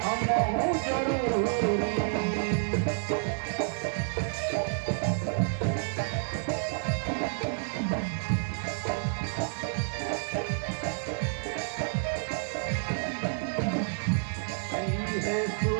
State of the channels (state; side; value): silent; left; digital silence